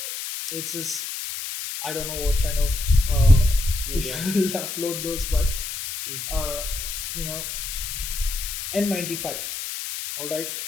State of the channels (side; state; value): left; noise; hiss, 6 dB below the sound